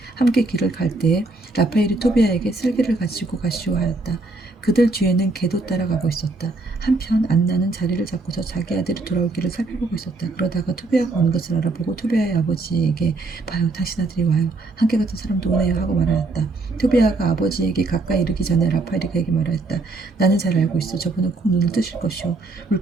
함께 길을 갈 때에 라파엘이 토비아에게 쓸개를 가지고 가시오 하였다. 그들 뒤에는 개도 따라가고 있었다. 한편 안나는 자리를 잡고서 자기 아들이 돌아오기를 살펴보고 있었다. 그러다가 토비아가 오는 것을 알아보고 토비아의 아버지에게 봐요, 당신 아들이 와요. 함께 갔던 사람도 오네요 하고 말하였다. 토비아가 아버지에게 가까이 이르기 전에 라파엘이 그에게 말하였다. 나는 잘 알고 있어. 저분은 꼭 눈을 뜨실 것이오.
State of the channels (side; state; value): left; quieter; 3.3 dB